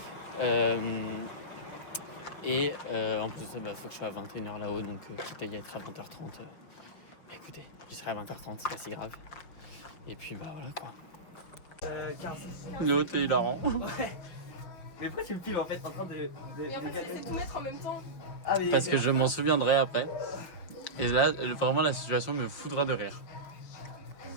En plus de ça, faut que je sois à 21h là-haut. Donc, quitte à y être à 20h30. Écoutez, j'y serai à 20h30, c'est pas si grave. Et puis, bah voilà quoi. 15. Léo, t'es hilarant. Mais pourquoi tu me filmes en fait en train de. Et en fait, c'est tout mettre en même temps. Ah, mais. Parce que je m'en souviendrai après. Et là, vraiment, la situation me foudra de rire.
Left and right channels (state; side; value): late; right; 5.5 ms